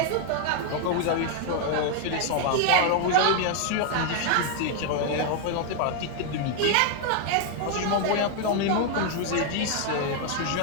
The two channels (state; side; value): different; both; correlation 0.00